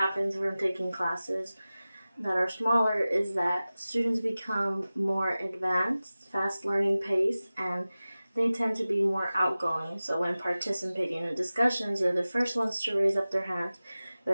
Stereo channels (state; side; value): inverted; both; correlation -0.97